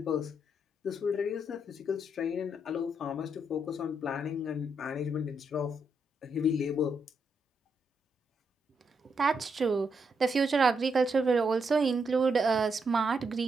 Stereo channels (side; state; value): both; normal; correlation 0.79